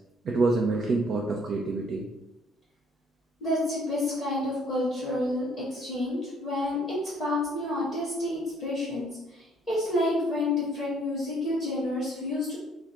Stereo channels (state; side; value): normal; both; correlation 0.62